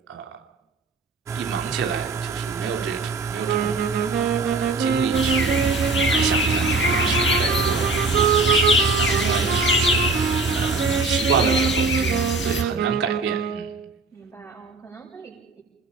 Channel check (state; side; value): quieter; left; 3.6 dB